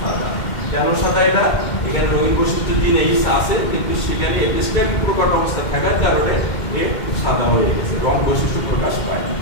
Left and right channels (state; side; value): late; right; 2.1 ms